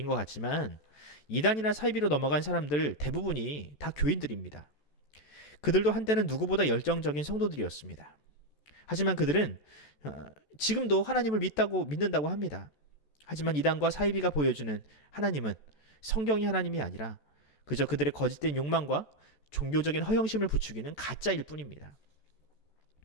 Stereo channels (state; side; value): late; right; 14 ms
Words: 것 같지만 이단이나 사이비로 넘어간 사람들 대부분이 다 교인들입니다. 그들도 한때는 누구보다 열정적인 성도들이었습니다. 하지만 그들은 지금도 하나님을 믿는다고 합니다. 하지만 이단과 사이비가 보여주는 하나님은 성경이 하나님이 아니라 그저 그들의 거짓된 욕망과 종교적인 허영심을 부추기는 가짜일 뿐입니다.